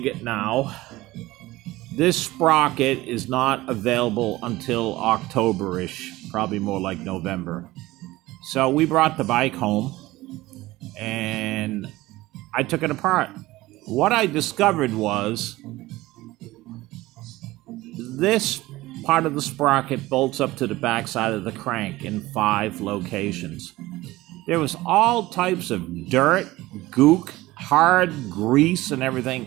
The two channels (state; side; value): quieter; left; 18.3 dB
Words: now, this sprocket is not available until October-ish, probably more like November. So we brought the bike home and I took it apart. What I discovered was this part of the sprocket bolts up to the backside of the crank in 5 locations. There was all types of dirt, gook, hard grease and